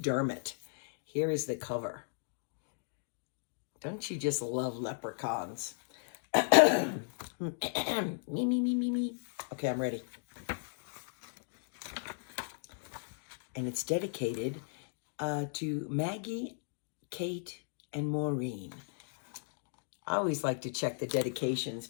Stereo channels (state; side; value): silent; right; digital silence